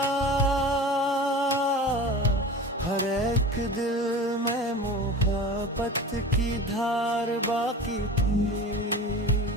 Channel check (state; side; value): normal; both; correlation 0.34